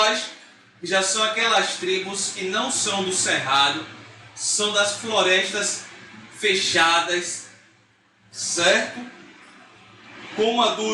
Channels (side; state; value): both; identical; correlation 1.00